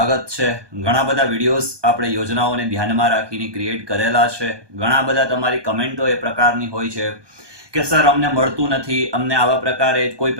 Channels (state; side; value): late; left; 1.2 ms